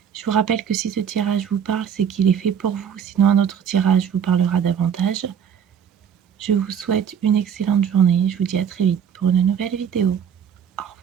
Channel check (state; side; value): quieter; left; 8.1 dB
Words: Je vous rappelle que si ce tirage vous parle, c'est qu'il est fait pour vous. Sinon, un autre tirage vous parlera davantage. Je vous souhaite une excellente journée. Je vous dis à très vite pour une nouvelle vidéo.